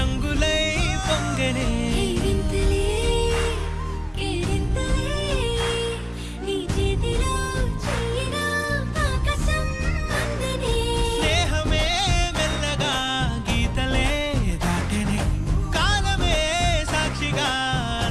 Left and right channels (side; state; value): both; identical; correlation 1.00